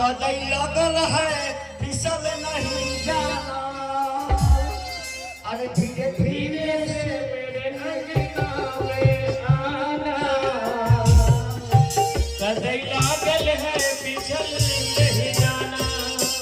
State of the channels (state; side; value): identical; both; correlation 1.00